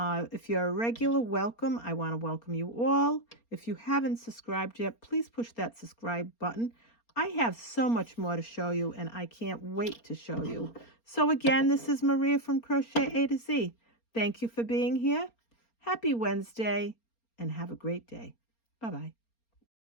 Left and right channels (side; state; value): right; late; 4.3 ms